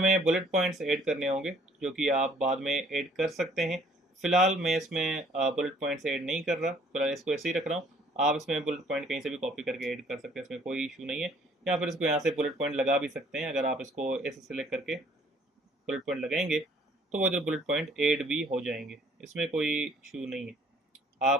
बुलेट पॉइंट्स ऐड करने होंगे जो कि आप बाद में ऐड कर सकते हैं। फिलहाल मैं इसमें बुलेट पॉइंट्स ऐड नहीं कर रहा, फिलहाल इसको ऐसे ही रख रहा हूँ। आप इसमें बुलेट पॉइंट कहीं से भी कॉपी करके ऐड कर सकते हैं, इसमें कोई इशू नहीं है। या फिर इसको यहाँ से बुलेट पॉइंट लगा भी सकते हैं। अगर आप इसको ऐसे सेलेक्ट करके बुलेट पॉइंट लगाएंगे तो वो इधर बुलेट पॉइंट ऐड भी हो जाएंगे, इसमें कोई इशू नहीं है।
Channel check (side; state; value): both; normal; correlation 0.59